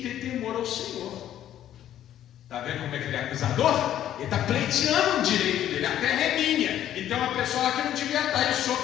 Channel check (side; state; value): right; quieter; 11.5 dB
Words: ter temor ao Senhor. Está vendo como é que ele é acusador? Ele está pleiteando o direito dele, a terra é minha. Então uma pessoa lá que não devia estar, e o Senhor